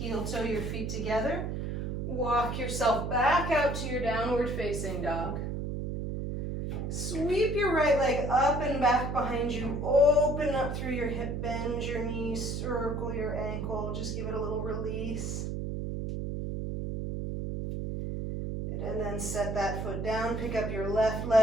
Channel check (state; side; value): noise; right; hum, 3 dB below the sound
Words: toe your feet together. Walk yourself back out to your downward facing dog. Sweep your right leg up and back behind you. Open up through your hip, bend your knees, circle your ankle. Just give it a little release. And then set that foot down, pick up your left